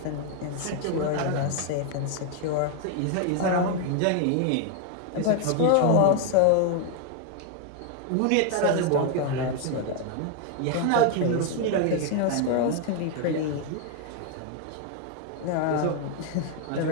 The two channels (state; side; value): different; both; correlation 0.00